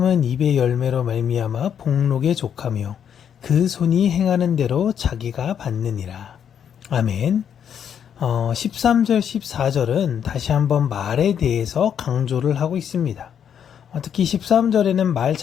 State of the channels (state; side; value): quieter; right; 8.5 dB